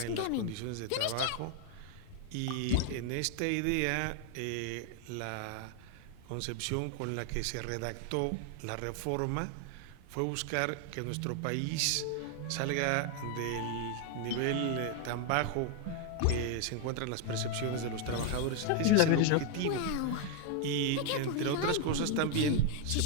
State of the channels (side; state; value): both; different; correlation 0.01